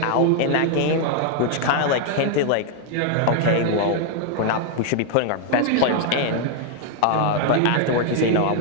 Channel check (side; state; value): both; different; correlation 0.00